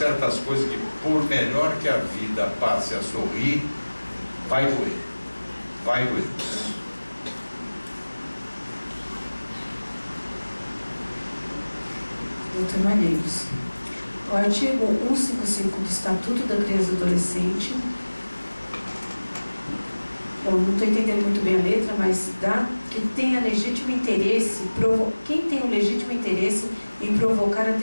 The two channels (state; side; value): inverted; both; correlation -1.00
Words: coisas que, por melhor que a vida passe a sorrir, vai doer. Doutor Malheiros, o artigo 155 do Estatuto da Criança e do Adolescente, eu não estou entendendo muito bem a letra, mas dá que tenha legítimo interesse, quem tem o legítimo interesse em provocar a